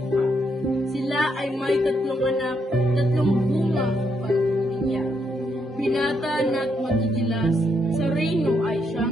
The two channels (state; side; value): normal; both; correlation 0.77